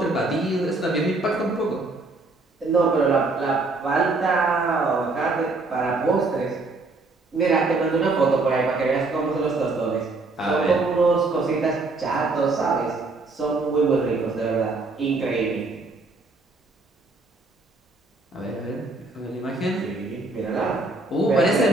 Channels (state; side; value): quieter; left; 3.4 dB